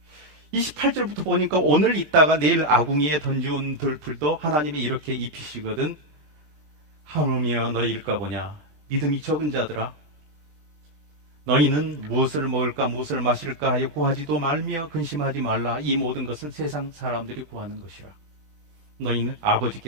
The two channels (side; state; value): left; late; 21 ms